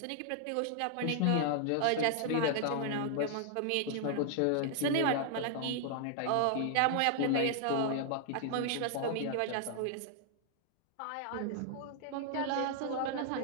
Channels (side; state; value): both; different; correlation -0.01